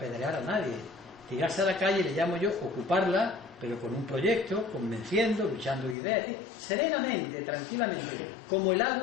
a nadie. Tirarse a la calle le llamo yo ocuparla, pero con un proyecto, convenciendo, luchando ideas, serenamente, tranquilamente, como el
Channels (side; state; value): right; drops out; at 6.0 s